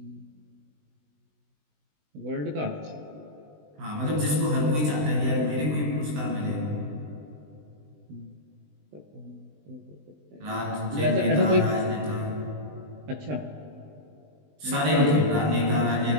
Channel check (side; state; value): left; late; 20 ms